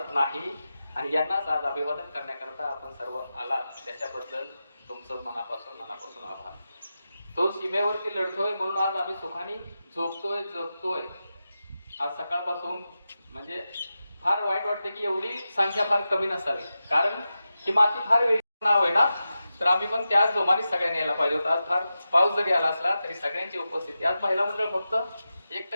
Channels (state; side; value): inverted; both; correlation -0.91